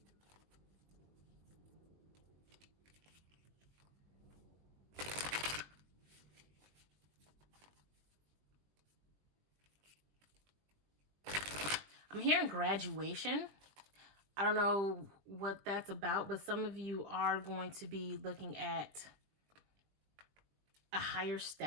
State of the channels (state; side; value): late; left; 20 ms